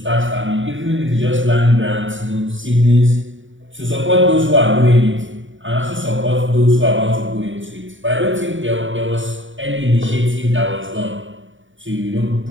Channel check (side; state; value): left; late; 0.56 ms